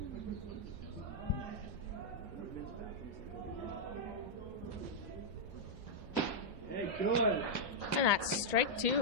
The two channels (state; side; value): normal; both; correlation -0.06